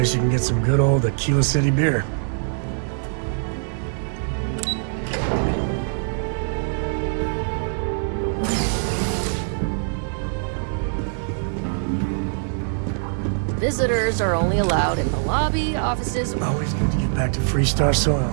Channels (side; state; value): left; silent; 60 dB below the other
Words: you can get some good old Aquila City beer. Visitors are only allowed in the lobby, offices... Always good to get back to Freestar